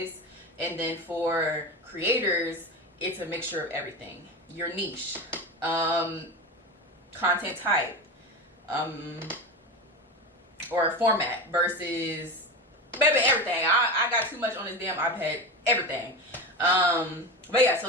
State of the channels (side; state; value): both; normal; correlation 0.23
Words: And then for creators, it's a mixture of everything. Your niche, content type, or format versus, baby, everything. I got too much on this damn iPad, everything. But yeah,